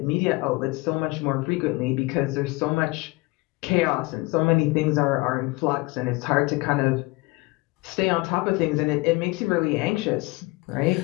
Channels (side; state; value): right; quieter; 23.8 dB